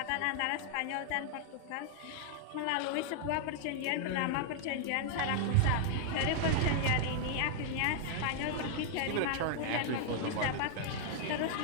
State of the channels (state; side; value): different; both; correlation -0.01